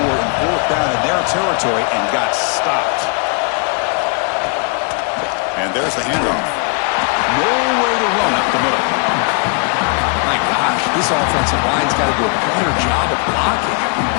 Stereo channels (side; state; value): right; quieter; 35.8 dB